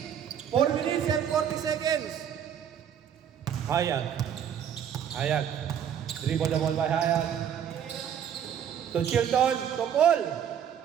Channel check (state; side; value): quieter; left; 8.9 dB